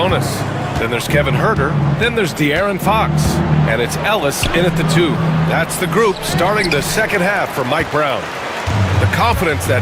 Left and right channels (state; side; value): identical; both; correlation 1.00